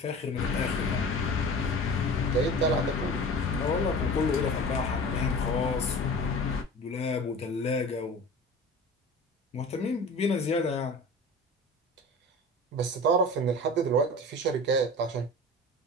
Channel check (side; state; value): both; normal; correlation 0.36